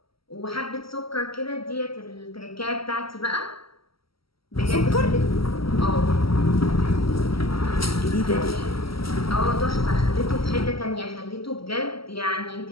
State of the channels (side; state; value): right; late; 0.75 ms